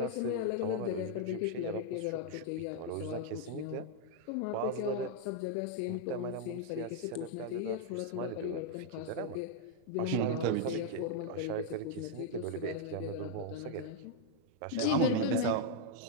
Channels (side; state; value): both; different; correlation 0.00